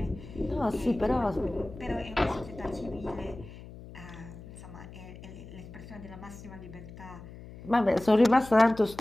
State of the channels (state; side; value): noise; left; hum, 15 dB below the sound